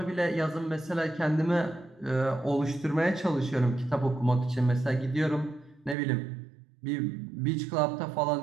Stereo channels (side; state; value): left; drops out; at 6.0 s